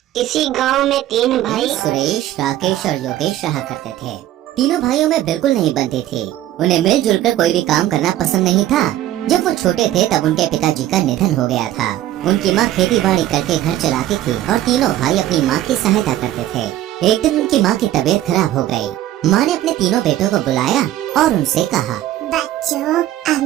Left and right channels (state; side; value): quieter; left; 13.5 dB